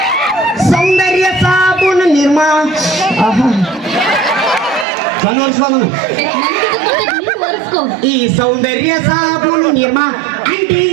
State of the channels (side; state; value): left; drops out; at 4.9 s